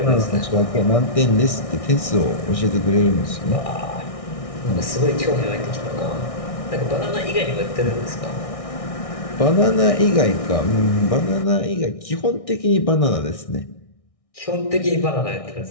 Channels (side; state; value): right; late; 1.6 ms